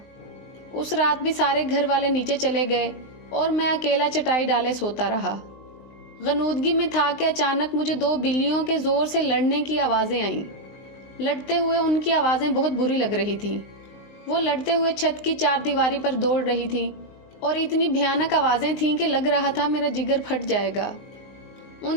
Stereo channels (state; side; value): late; right; 19 ms